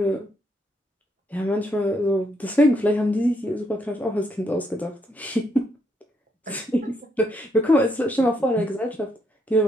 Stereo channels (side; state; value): both; normal; correlation 0.76